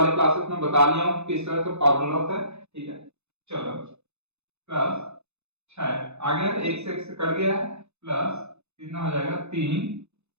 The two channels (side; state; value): left; late; 0.81 ms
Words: क्लासेस में बता लिया हूँ किस तरह से फॉर्मूला होता है। ठीक है, चलो प्लस 6 आ गया, एक से कट गया है, प्लस कितना हो जाएगा 3।